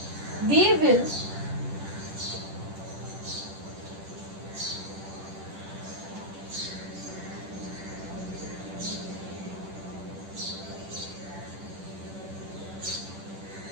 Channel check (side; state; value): left; late; 10 ms